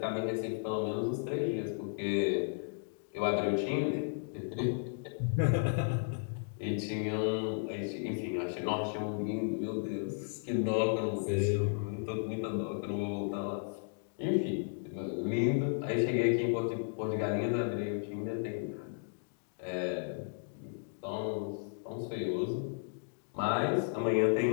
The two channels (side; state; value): right; silent; digital silence